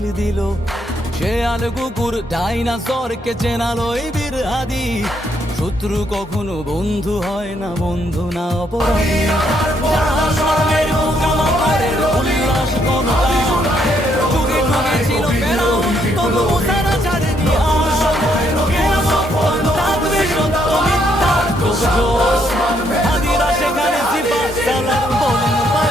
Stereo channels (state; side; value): normal; both; correlation 0.73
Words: দিল। শেয়াল কুকুর ডাইনাসরকে চেনালো এই বীর হাদি, শত্রু কখনো বন্ধু হয় না, বন্ধু না অপরাধী। জাহান্নামের পোকামাকড়ের উল্লাস ক্ষমতা, যুগে যুগে ছিল ফেরাউন, তবু মুসারা ছাড়েনি আর। কিয়ামত থাকবে সত্য মিথ্যার তোড়জোড়, হাদিরা সেখানে সিফাত সালাত বলেন